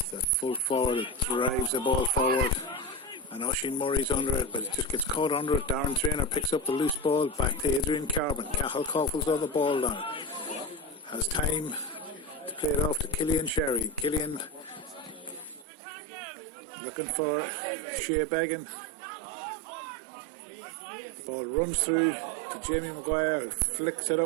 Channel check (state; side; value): drops out; left; at 15.7 s